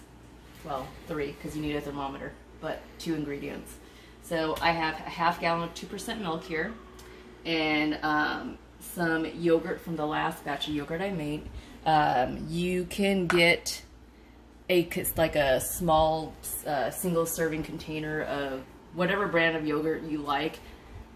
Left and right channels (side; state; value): both; identical; correlation 1.00